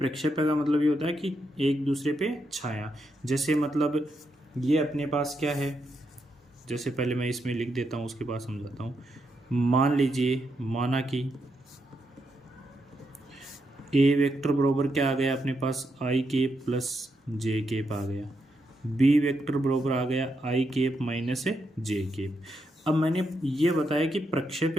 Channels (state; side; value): normal; both; correlation 0.82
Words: का मतलब ये होता है कि एक दूसरे पे छाया, जैसे मतलब ये अपने पास क्या है, जैसे पहले मैं इसमें लिख देता हूँ उसके बाद समझाता हूँ। मान लीजिए, माना कि ए वेक्टर बराबर क्या आ गया अपने पास आई केप प्लस जे केप आ गया, बी वेक्टर बराबर आ गया आई केप माइनस जे केप। अब मैंने ये बताया कि